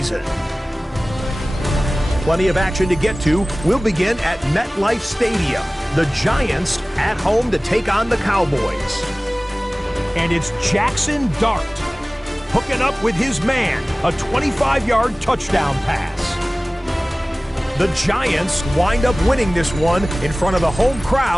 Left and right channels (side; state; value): both; normal; correlation 0.98